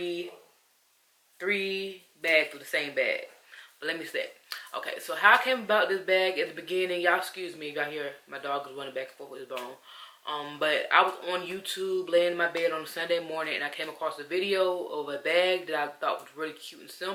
bags of the same bag. But let me say, okay, so how I came about this bag at the beginning, y'all excuse me, y'all hear my dog is running back and forth with his bone. But I was on YouTube laying in my bed on a Sunday morning and I came across a video of a bag that I thought was really cute and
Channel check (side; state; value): both; identical; correlation 1.00